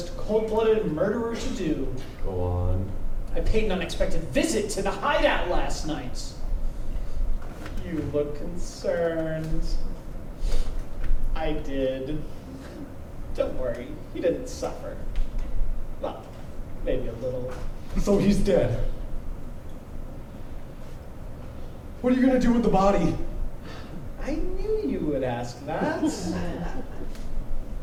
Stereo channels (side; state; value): both; identical; correlation 1.00